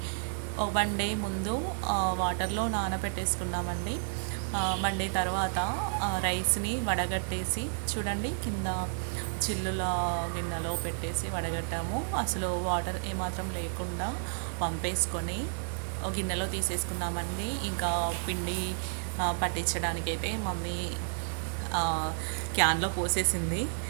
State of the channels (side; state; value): left; silent; digital silence